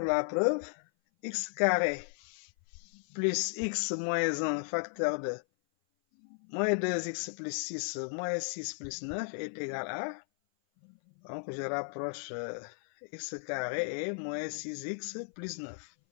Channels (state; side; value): silent; right; 55 dB below the other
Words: la preuve. X carré plus x moins 1 facteur de moins 2x plus 6 moins 6 plus 9 est égal à... Donc, je rapproche x carré et moins 6x plus 9.